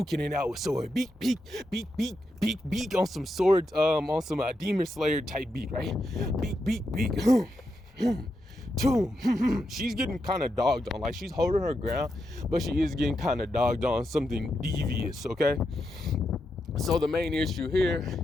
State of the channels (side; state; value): both; normal; correlation 0.85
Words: it out with sword. Beak, on some swords, on some Demon Slayer type beat, right? Beak. She's getting kind of dogged on. Like, she's holding her ground, but she is getting kind of dogged on something devious, okay? So the main issue here